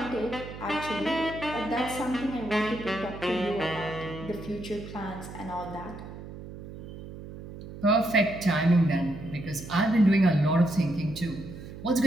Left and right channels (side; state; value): right; noise; hum, 13 dB below the sound